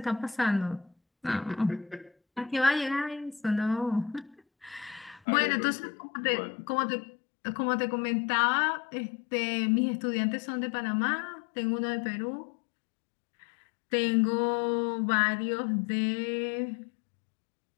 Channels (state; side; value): drops out; right; at 5.2 s